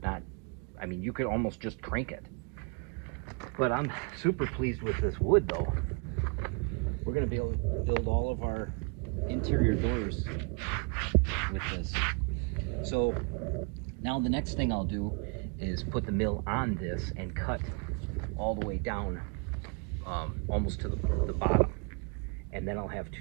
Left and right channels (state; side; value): quieter; left; 34.5 dB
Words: not. I mean, you could almost just crank it. But I'm super pleased with this wood, though. We're going to be able to build all of our interior doors with this. So now the next thing I'll do is put the mill on this and cut all the way down almost to the bottom. And then I'll have